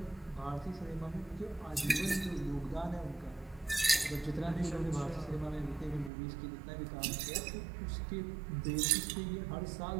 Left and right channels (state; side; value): drops out; left; at 6.1 s